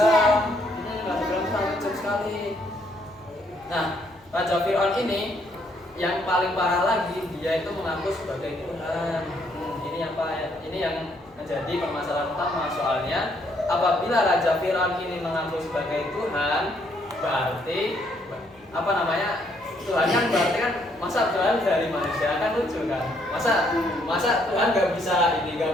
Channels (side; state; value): left; noise; hum, 29 dB below the sound